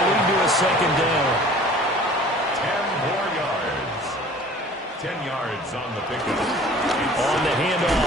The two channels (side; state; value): both; normal; correlation 0.48